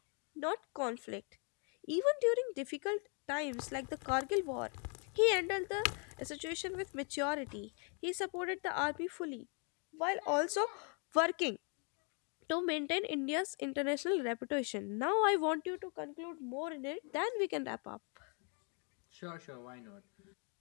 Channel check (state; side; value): quieter; right; 38.5 dB